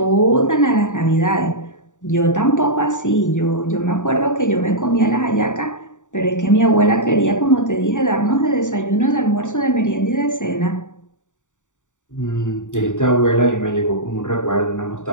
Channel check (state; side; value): late; right; 0.86 ms